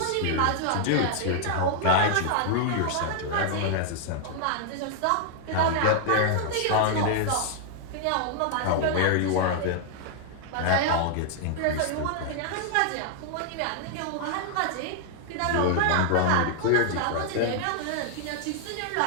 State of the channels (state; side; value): different; both; correlation 0.00